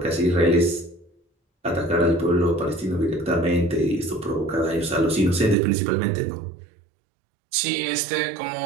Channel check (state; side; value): drops out; left; at 5.6 s